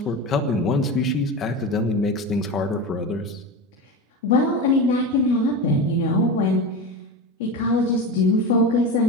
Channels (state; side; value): normal; both; correlation 0.24